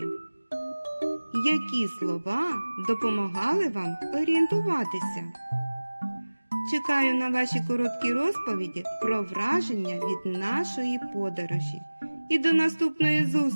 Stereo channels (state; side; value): inverted; both; correlation -1.00